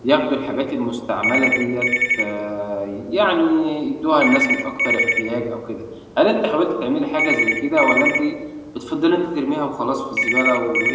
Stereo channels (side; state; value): both; identical; correlation 1.00